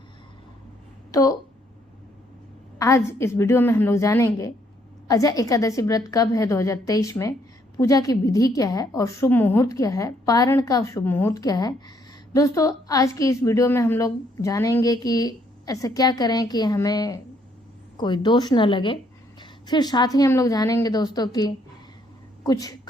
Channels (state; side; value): normal; both; correlation 0.69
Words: तो आज इस वीडियो में हम लोग जानेंगे अजय एकादशी व्रत कब है 2023 में, पूजा की विधि क्या है और शुभ मुहूर्त क्या है, पारण का शुभ मुहूर्त क्या है। दोस्तों, आज की इस वीडियो में हम लोग जानेंगे कि ऐसा क्या करें कि हमें कोई दोष न लगे। फिर साथ ही हम लोग जानेंगे दोस्तों कि कुछ